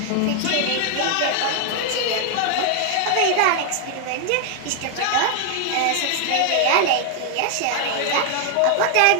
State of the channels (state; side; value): different; both; correlation 0.00